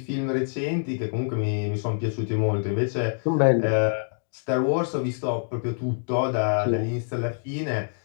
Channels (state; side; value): silent; right; digital silence